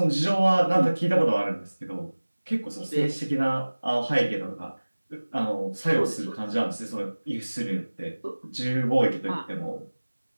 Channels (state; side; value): inverted; both; correlation -1.00